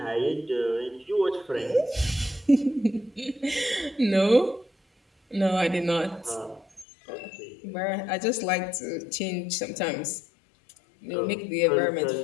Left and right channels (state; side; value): drops out; right; at 6.9 s